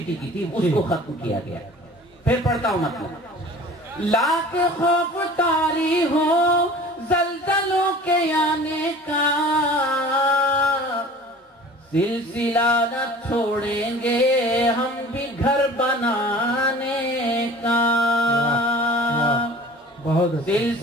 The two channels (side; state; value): both; normal; correlation 0.44